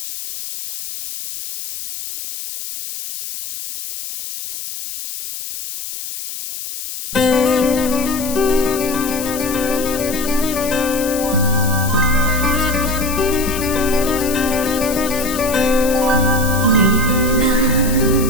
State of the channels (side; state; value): left; noise; hiss, 8 dB below the sound